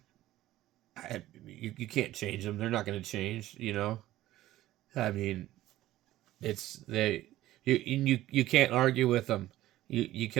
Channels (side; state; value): left; quieter; 15.2 dB